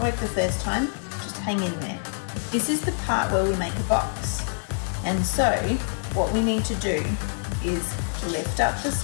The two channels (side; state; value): right; silent; digital silence